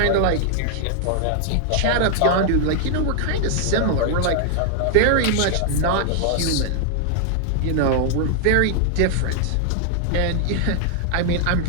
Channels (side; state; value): both; different; correlation 0.00